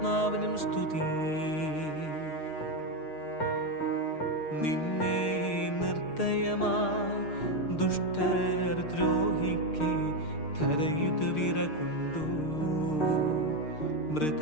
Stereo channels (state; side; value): late; right; 6.5 ms